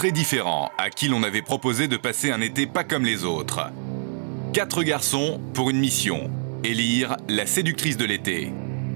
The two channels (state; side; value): silent; left; 57 dB below the other